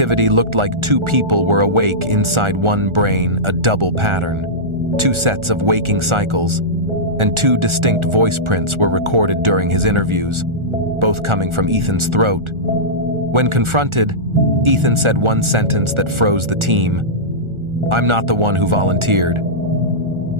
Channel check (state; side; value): late; left; 1.4 ms